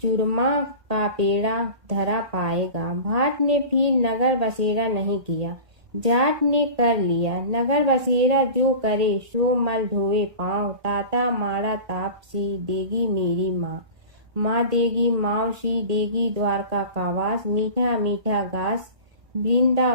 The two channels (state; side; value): late; left; 1.8 ms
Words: चूरमा का पेड़ा धरा पाएगा। भाट ने फिर नगर बसेरा नहीं किया, जाट ने कर लिया। नगर बसेरा जो करे सो मल धोए पाँव, ताता माड़ा तापसी देगी मेरी माँ, माँ देगी मावसी देगी द्वारका का वास, मीठा मीठा घास